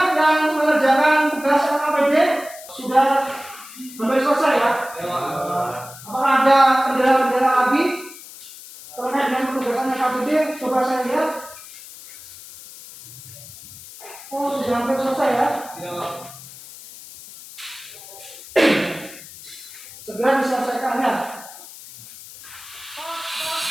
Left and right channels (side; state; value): left; noise; hiss, 16 dB below the sound